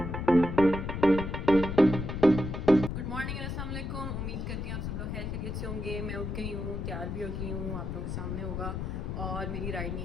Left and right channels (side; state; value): left; noise; rumble, 4 dB below the sound